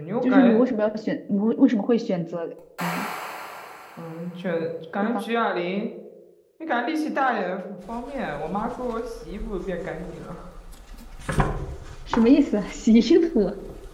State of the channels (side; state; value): both; identical; correlation 1.00